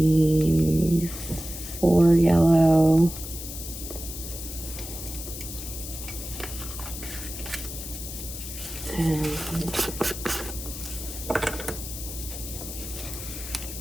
4 yellow. And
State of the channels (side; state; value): left; noise; hiss, 9 dB below the sound